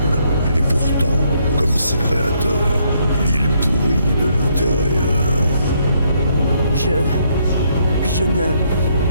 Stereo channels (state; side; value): inverted; both; correlation -0.72